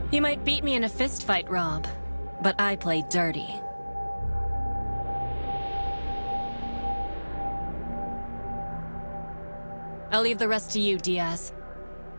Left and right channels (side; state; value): both; inverted; correlation -1.00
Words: You might beat me in a fist fight, Rob, but I play dirty. I'll leave the rest to you, Diaz.